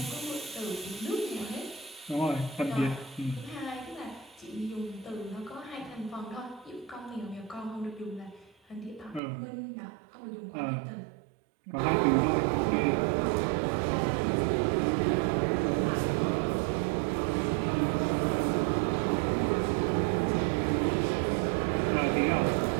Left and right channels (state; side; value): drops out; left; at 9.2 s